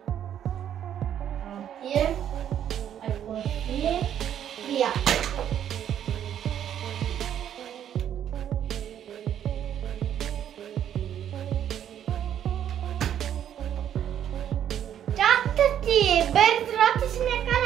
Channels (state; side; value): quieter; left; 10.0 dB